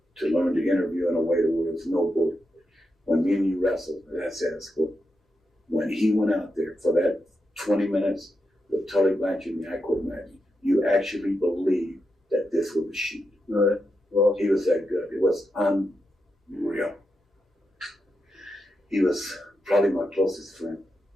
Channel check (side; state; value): both; normal; correlation 0.86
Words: to learn to interview in a way that was no bull. When me and you wrestled, that's at school. When he went out there for that 20 minutes with Tully Blanchard and I couldn't imagine, you actually believed that this was a shoot. Right. Well, he was that good. It was unreal. He was probably my closest friend.